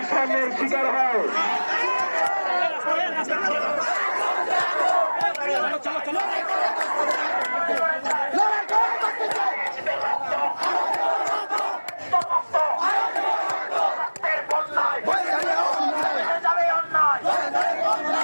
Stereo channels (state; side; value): inverted; both; correlation -1.00